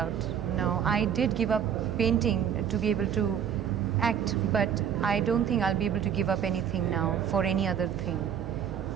No, I did give up painting to be able to act, but I don't think I'll be able to give up anything now for any other thing.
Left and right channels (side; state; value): left; quieter; 8.6 dB